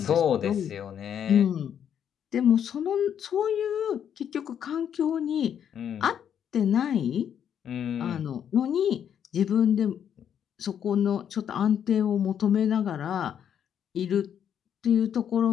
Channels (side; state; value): right; quieter; 8.9 dB